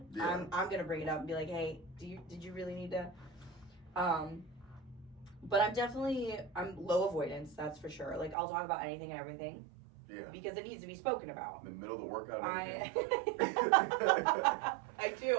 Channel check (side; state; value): left; drops out; at 8.3 s